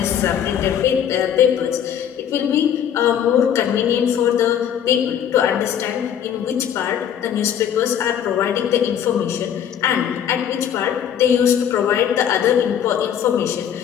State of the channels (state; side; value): quieter; right; 9.2 dB